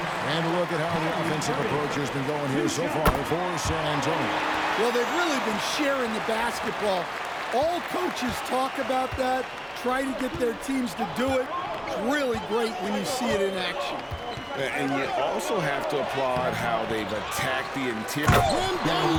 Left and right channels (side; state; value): both; identical; correlation 1.00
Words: And look at how the offensive approach has been going here so far for San Antonio. Well, they've really been sharing the basketball. All coaches talk about that, try to get their teams to do it. It's really great when you see it in action. And you also have to applaud how they've attacked the interior.